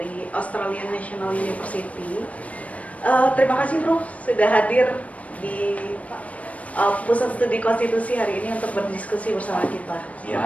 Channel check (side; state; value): right; late; 0.067 ms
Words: Australian National University. Terima kasih Prof sudah hadir di Pusat Studi Konstitusi hari ini untuk berdiskusi bersama kita.